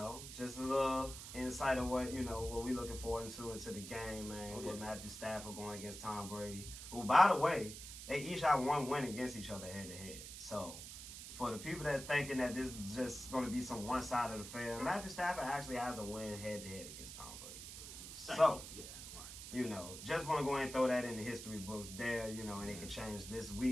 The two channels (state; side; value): noise; right; hiss, 10 dB below the sound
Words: Just a little insight of what we looking forward to into the game, man. With Matthew Stafford going against Tom Brady. Who, by the way, they each have 1 win against each other head to head. So, for the people that thinking that this is just going to be some one side of the affair, Matthew Stafford actually has a win head to head against Tom Brady. Just want to go ahead and throw that in the history books there, and it can change this